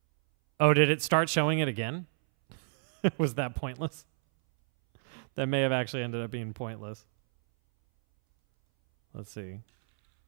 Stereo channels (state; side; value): silent; left; 58 dB below the other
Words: Oh, did it start showing it again? Was that pointless? That may have actually ended up being pointless. Let's see.